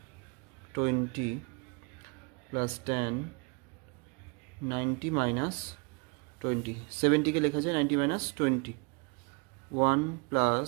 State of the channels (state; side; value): quieter; left; 32.0 dB